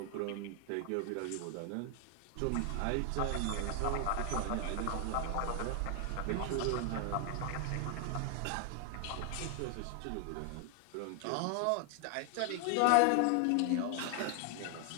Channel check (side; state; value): both; different; correlation 0.00